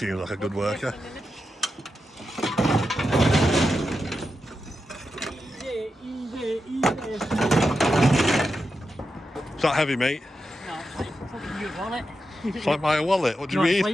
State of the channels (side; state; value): both; normal; correlation 0.88